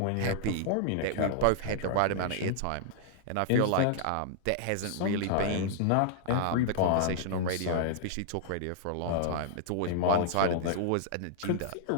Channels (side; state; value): both; different; correlation -0.01